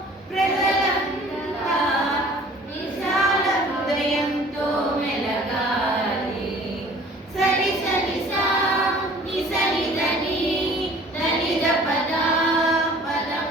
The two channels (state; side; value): normal; both; correlation 0.50